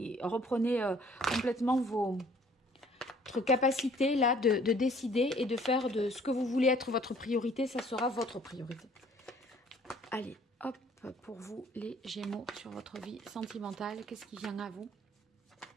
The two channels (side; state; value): both; normal; correlation 0.57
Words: reprenez complètement votre capacité là de décider et de faire de ce que vous voulez être votre priorité, ça sera votre priorité. Allez, hop, pour vous les Gémeaux sur votre vie sentimentale, qu'est-ce qui vient à vous?